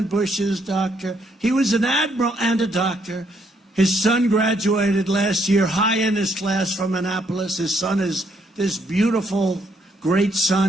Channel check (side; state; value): both; normal; correlation 0.72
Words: Bush's doctor. He was an admiral and a doctor. His son graduated last year, high in his class from Annapolis. His son is this beautiful, great